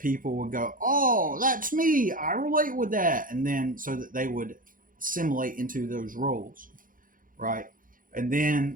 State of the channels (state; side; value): late; left; 0.40 ms